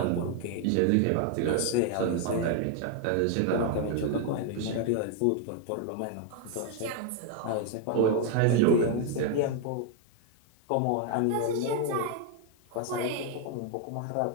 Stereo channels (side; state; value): both; different; correlation 0.00